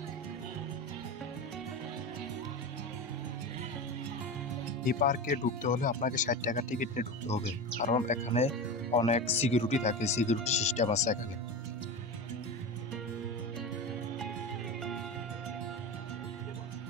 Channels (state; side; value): normal; both; correlation 0.24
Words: এই পার্কে ঢুকতে হলে আপনাকে 60 টাকা টিকিট নিয়ে ঢুকতে হবে, কারণ এখানে অনেক সিকিউরিটি থাকে, সিকিউরিটি সিস্টেম আছে এখানে।